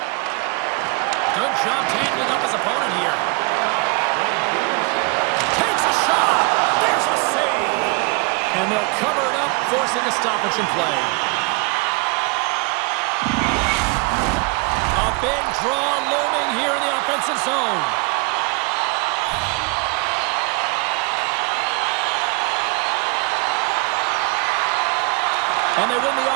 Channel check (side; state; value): left; quieter; 29.1 dB